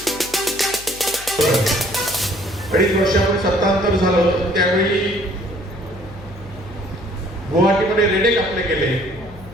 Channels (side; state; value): left; noise; hum, 18 dB below the sound